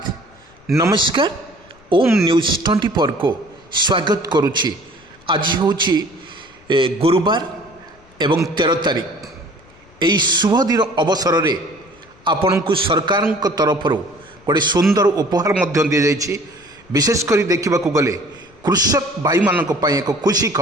नमस्कार। ओम न्यूज 24 को स्वागत करुछि। आज होछि गुरुवार एवं 13 तारीख। यही शुभ दिन अवसर रे आपण को सरकार तरफ गोटे सुंदर उपहार मध्य दि जाइछि। विशेषकर देखा गले कृषक भाई मानक पई एक खुशी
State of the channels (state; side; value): noise; left; rumble, 28 dB below the sound